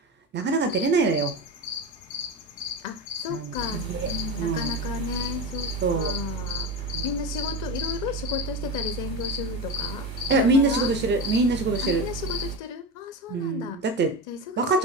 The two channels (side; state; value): both; normal; correlation 0.22